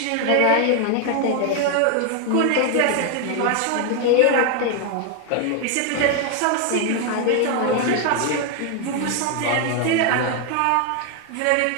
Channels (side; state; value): both; different; correlation 0.01